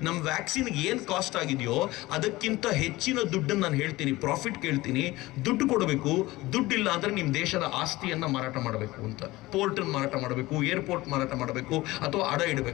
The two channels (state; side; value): quieter; right; 19.3 dB